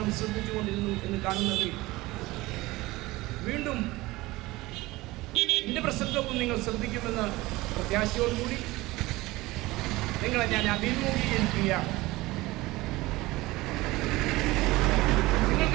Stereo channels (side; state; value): left; quieter; 19.9 dB